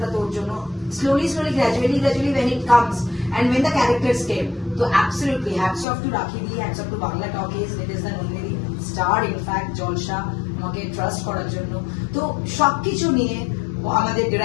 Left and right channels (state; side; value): drops out; right; at 5.9 s